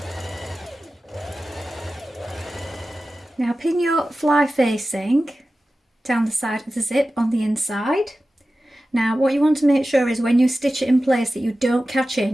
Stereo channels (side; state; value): both; normal; correlation 0.94